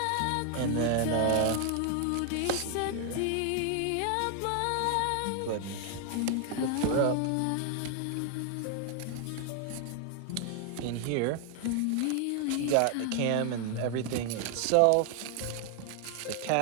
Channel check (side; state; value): both; different; correlation 0.00